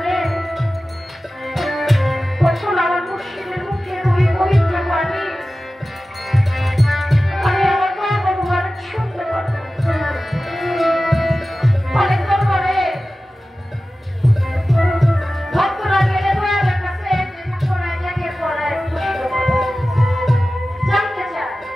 কখন আমার মুর্শিদের মুখে ওই পবিত্র বাণী আমি আমার মা ভগবানের শুনতে পারবো। অনেক দরবারে ভক্তরা গেলে দয়ালের কাছে পড়ায় জায়গায় পড়ায় জানতে চায়,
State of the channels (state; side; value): normal; both; correlation 0.95